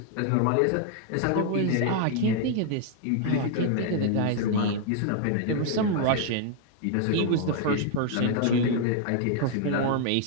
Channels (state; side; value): different; both; correlation 0.00